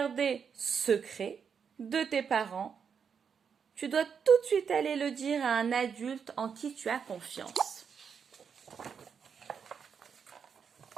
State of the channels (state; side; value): quieter; left; 6.7 dB